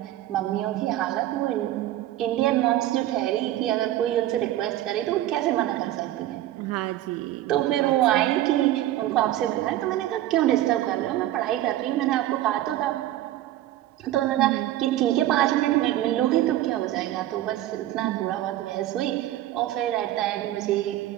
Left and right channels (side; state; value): left; quieter; 14.0 dB